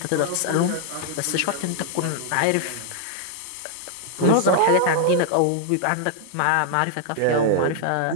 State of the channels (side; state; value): both; different; correlation -0.01